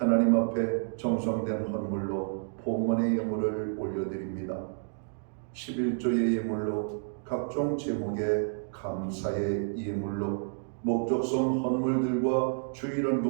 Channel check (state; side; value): silent; left; digital silence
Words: 앞에 정성된 헌물로 봉헌의 예물을 올려드립니다. 11조의 예물로 각종 제목의 감사의 예물로 목적성 헌물들과